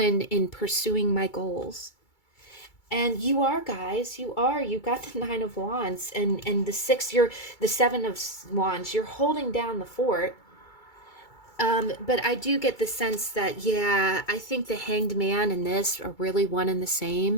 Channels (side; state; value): right; late; 2.3 ms